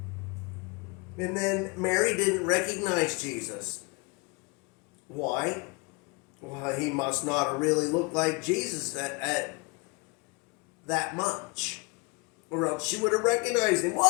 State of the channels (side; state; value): right; quieter; 28.2 dB